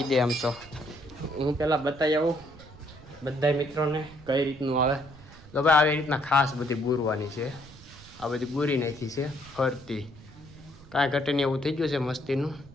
દે આમ તો હું પહેલાં બતાવી આવું બધા મિત્રોને કઈ રીતનું આવે તો ભાઈ આવી રીતના ખાસ બધી બુરવાની છે. આ બધી બુરી નાખી છે ફરતી કાંઈ ઘટે નહીં એવું થઈ ગયું છે મસ્તીનું.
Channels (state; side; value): noise; right; rumble, 20 dB below the sound